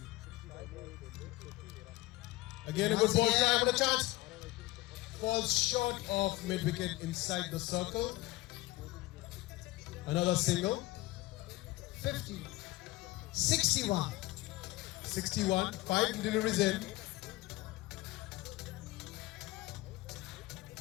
Again, a good ball try, but a chance. Falls short of mid-wicket inside the circle. Another single. 50, 61. 61, 5 deliveries in.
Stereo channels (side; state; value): right; quieter; 19.1 dB